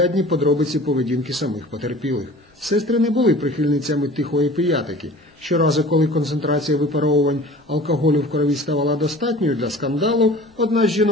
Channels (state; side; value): normal; both; correlation 0.43